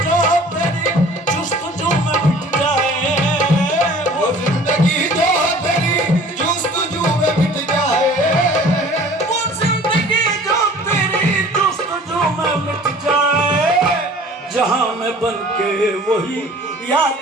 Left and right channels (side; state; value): both; normal; correlation 0.48